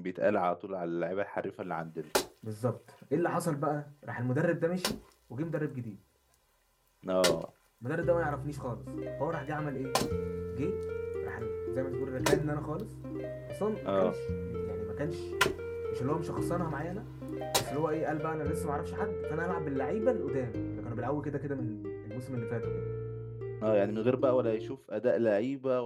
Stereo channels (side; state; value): both; identical; correlation 1.00